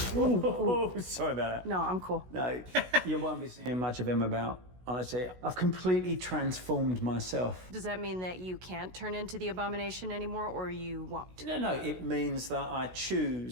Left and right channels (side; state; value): left; late; 16 ms